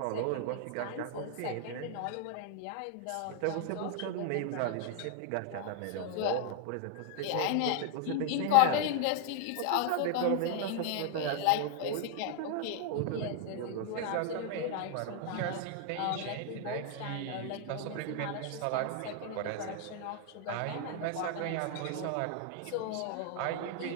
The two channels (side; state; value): both; different; correlation 0.00